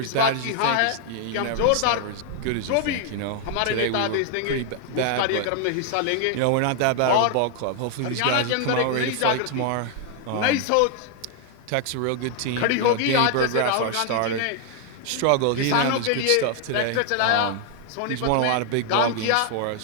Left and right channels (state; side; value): different; both; correlation 0.00